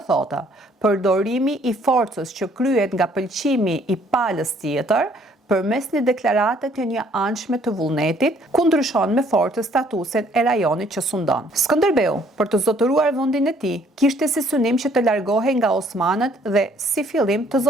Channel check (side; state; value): both; normal; correlation 0.62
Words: thotë përdorimi i forcës që kryhet nga pëlqimi i palës tjetër përmes një deklarate të një anshme të vullnetit, ku ndryshon me fortë statusin e rajonit që sundon. Skënderbeu, për të zotëruar vendin e tij, kishte si synim që të largohej nga osmanët dhe si fillim të